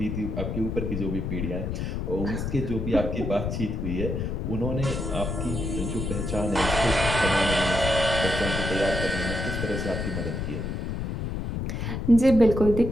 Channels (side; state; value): left; noise; rumble, 3 dB below the sound